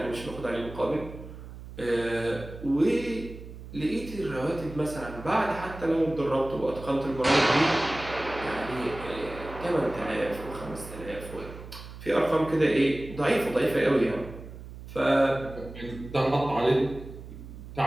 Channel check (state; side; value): noise; right; hum, 13 dB below the sound